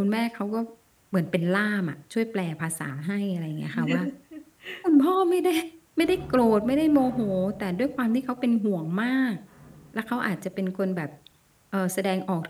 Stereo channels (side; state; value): both; identical; correlation 1.00